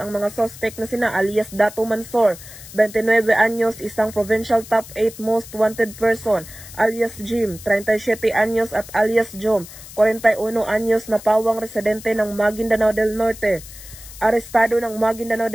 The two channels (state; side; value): noise; left; hiss, 16 dB below the sound